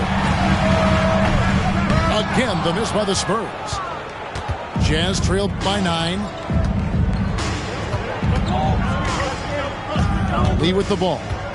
Again, the miss by the Spurs. Jazz trailed by 9. Lee with the ball.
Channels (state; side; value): identical; both; correlation 1.00